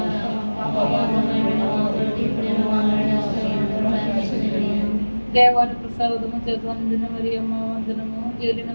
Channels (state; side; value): inverted; both; correlation -1.00